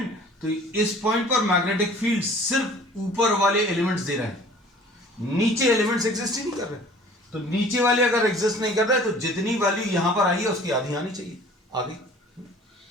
तो इस पॉइंट पर मैग्नेटिक फील्ड सिर्फ ऊपर वाले एलिमेंट्स दे रहे हैं, नीचे एलिमेंट्स एग्जिस्ट ही नहीं कर रहे। तो नीचे वाले अगर एग्जिस्ट नहीं कर रहे तो जितनी वैल्यू यहां पर आई है उसकी आधी आनी चाहिए, आगे।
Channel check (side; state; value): both; normal; correlation 0.49